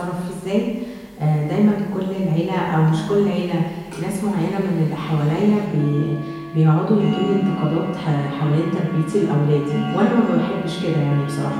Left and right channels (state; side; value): identical; both; correlation 1.00